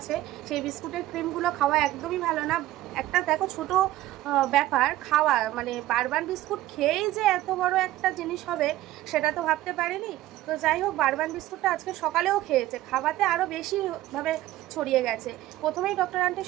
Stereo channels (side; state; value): left; quieter; 15.4 dB